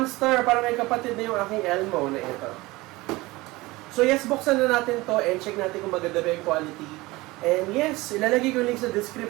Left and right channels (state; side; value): quieter; left; 21.0 dB